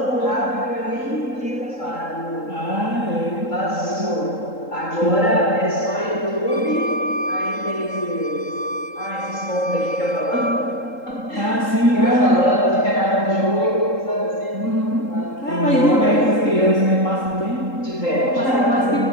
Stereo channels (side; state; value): right; late; 3.8 ms